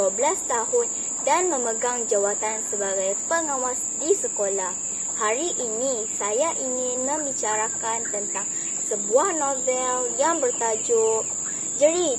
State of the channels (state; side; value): identical; both; correlation 1.00